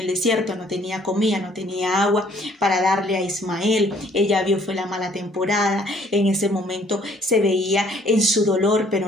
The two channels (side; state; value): both; normal; correlation 0.61